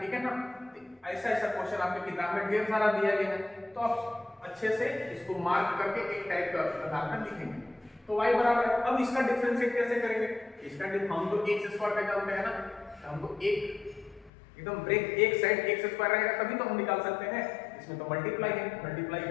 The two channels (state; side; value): drops out; right; at 14.3 s